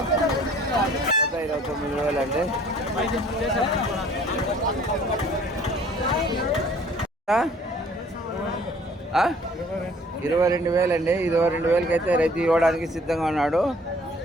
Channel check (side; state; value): both; normal; correlation 0.55